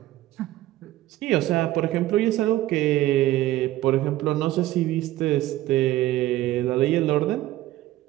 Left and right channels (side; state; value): left; quieter; 15.4 dB